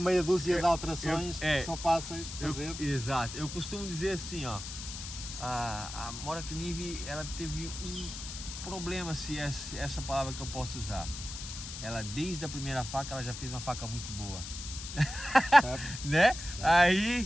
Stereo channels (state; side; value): noise; left; hiss, 9 dB below the sound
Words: dúzia de alterações que são fáceis de fazer. Exato, eu costumo dizer assim, ó, a Mora Kniv, ela teve um problema, se é essa palavra que eu posso usar. Ela, desde a primeira faca, ela já fez uma faca muito boa. Né?